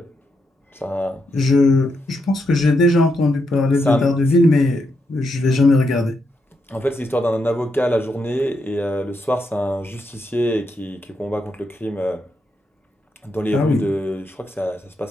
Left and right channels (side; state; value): both; normal; correlation 0.82